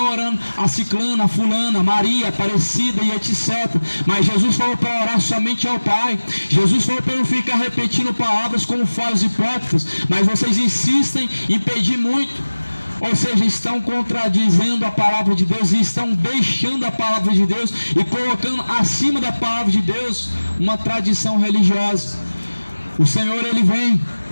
orando a Ciclana, a Fulana, a Maria, a Aparecida e etc. Mas Jesus falou para orar somente ao Pai. Jesus falou para não ficar repetindo palavras como fazem os hipócritas, mas vocês insistem em pedir muito. Ou seja, estão contradizendo a palavra de Deus e estão deixando a palavra de Deus e colocando acima da palavra de Deus uma tradição religiosa. O Senhor, Ele vem.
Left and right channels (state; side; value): inverted; both; correlation -1.00